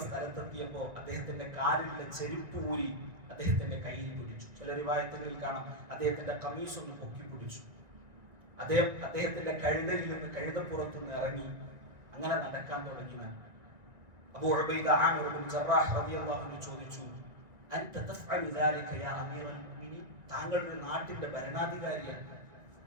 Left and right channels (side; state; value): left; late; 1.9 ms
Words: സ്ഥലത്തെത്തിയപ്പോൾ അദ്ദേഹത്തിന്റെ കാലിലുള്ള ചെരുപ്പ് ഊരി അദ്ദേഹത്തിന്റെ കയ്യിൽ പിടിച്ചു. ചില റിവായത്തുകളിൽ കാണാം അദ്ദേഹത്തിന്റെ കമീസ് ഒന്ന് പൊക്കി പിടിച്ചു. അദ്ദേഹത്തിന്റെ കഴുതയിൽ നിന്ന്, കഴുതപ്പുറത്ത് നിന്ന് ഇറങ്ങി അങ്ങനെ നടക്കാൻ തുടങ്ങി. അബൂ ഉബൈദ ആമിർ ഇബ്നു ജറാഹ് റളിയല്ലാഹു അൻഹു ചോദിച്ചു, അൻത തഫ്അലു ദാലിക യാ അമീറൽ മുഅ്മിനീൻ? താങ്കൾ ഒരു നാട്ടിന്റെ ഭരണാധികാരിയാണ്,